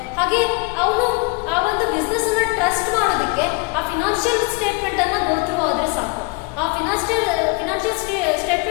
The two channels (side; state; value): right; quieter; 27.9 dB